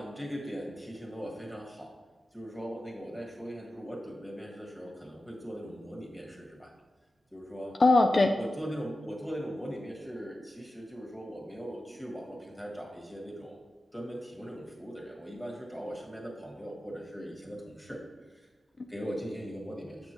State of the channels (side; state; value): both; normal; correlation 0.93